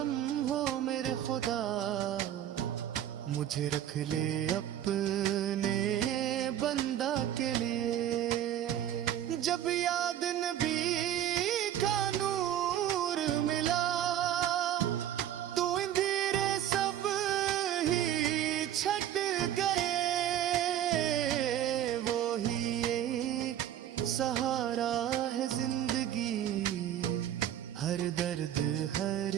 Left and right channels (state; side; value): quieter; left; 11.2 dB